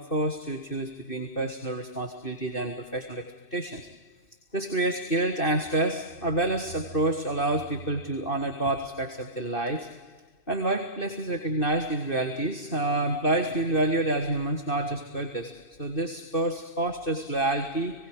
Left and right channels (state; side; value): late; right; 2.6 ms